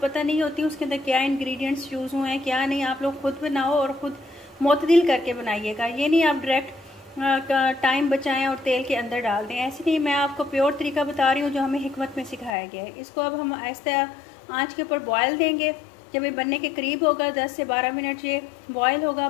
नहीं होती उसके अंदर क्या इंग्रेडिएंट्स यूज़ हुए हैं, क्या नहीं। आप लोग खुद बनाओ और खुद मुतदिल करके बनाइएगा। ये नहीं आप डायरेक्ट टाइम बचाएं और तेल के अंदर डाल दें, ऐसे नहीं। मैं आपको प्योर तरीका बता रही हूँ जो हमें हिकमत में सिखाया गया है। इसको अब हम आहिस्ता आँच के ऊपर बॉयल देंगे। जब ये बनने के करीब होगा, 10 से 12 मिनट ये बॉयल होगा,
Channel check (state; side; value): drops out; right; at 12.5 s